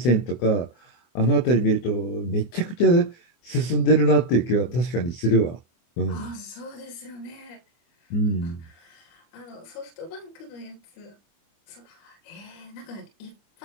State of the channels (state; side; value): late; right; 24 ms